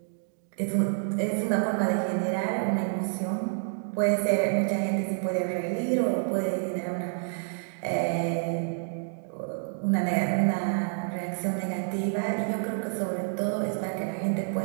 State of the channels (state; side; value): silent; left; digital silence